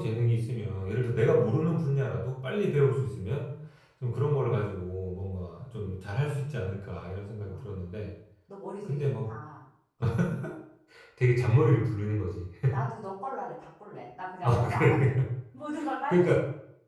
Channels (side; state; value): both; identical; correlation 1.00